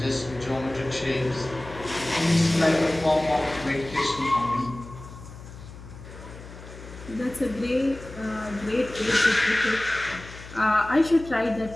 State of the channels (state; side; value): noise; left; hum, 15 dB below the sound